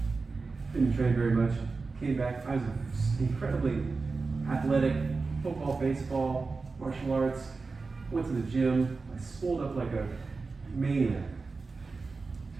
Didn't train very much. Came back. I was incredibly athletic. Football, baseball, martial arts. Went to the gym. I swolled up like a maniac.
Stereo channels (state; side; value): quieter; left; 4.1 dB